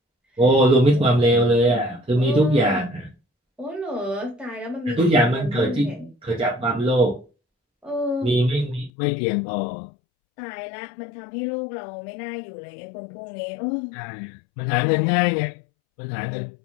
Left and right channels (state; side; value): drops out; right; at 8.9 s